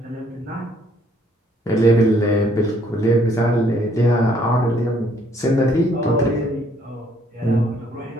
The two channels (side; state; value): both; normal; correlation 0.65